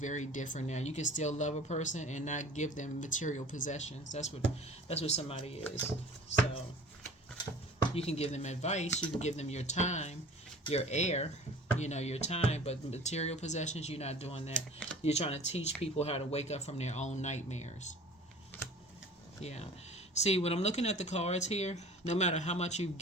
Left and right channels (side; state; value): both; normal; correlation 0.44